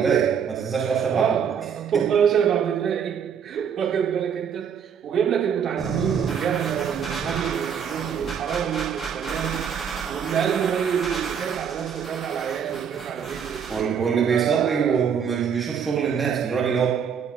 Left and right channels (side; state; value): left; quieter; 7.4 dB